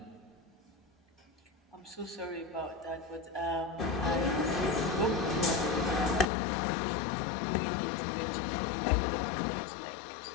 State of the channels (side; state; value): right; drops out; at 6.2 s